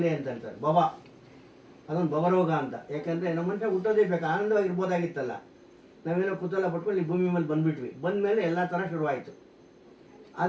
ಅಂತ ಹೇಳ್ತಾರೆ. ಭವ ಅದೊಂದು ಭವರೋಗ ಅಂತ. ಯಾಕೆಂದರೆ ನಮ್ಮ ಮನುಷ್ಯ ಹುಟ್ಟೋದೇ ಬೇಕು, ಆನಂದವಾಗಿರ್ಬೋದಾಗಿತ್ತಲ್ಲ. ನಾವೇನೋ ಕುತೂಹಲ ಪಟ್ಕೊಂಡು ಈ ಭೂಮಿ ಮೇಲೆ ಬಂದುಬಿಟ್ವಿ. ಬಂದಮೇಲೆ ಎಲ್ಲ ಥರ ಶುರುವಾಯಿತು.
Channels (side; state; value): both; identical; correlation 1.00